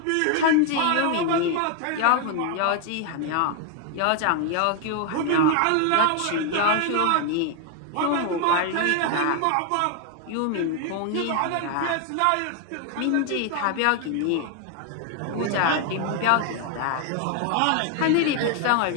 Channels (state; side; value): different; both; correlation 0.00